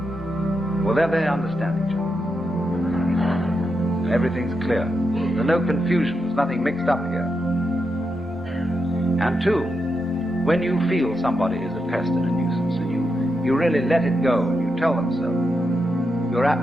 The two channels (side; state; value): both; normal; correlation 0.85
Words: Well, there they understand each other. Everything's clear. There's no confusion, there's nothing mixed up here. And two, when you feel somebody is a pest and a nuisance, and you really let it go, and you tell them so, you're